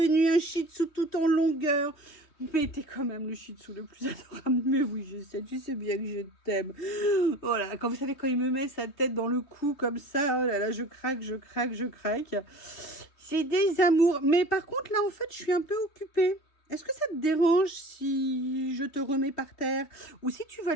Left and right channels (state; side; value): late; right; 3.3 ms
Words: un Shih Tzu tout en longueur. Mais t'es quand même le Shih Tzu le plus adorable. Mais oui, je sais, tu sais bien que je t'aime. Voilà, quand vous savez, quand il me met sa tête dans le cou comme ça, oh là là, je craque, je craque, je craque. C'est des amours. Mais par contre, là, en fait, je suis un peu occupée. Est-ce que ça te dérange si je te remets par terre? Ou si tu vas